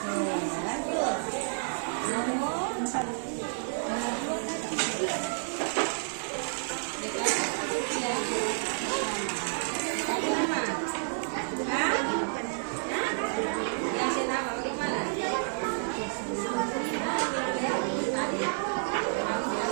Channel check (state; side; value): silent; left; digital silence